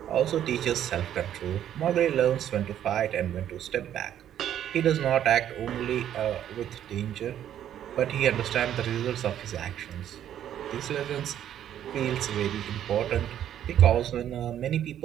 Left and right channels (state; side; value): quieter; left; 10.7 dB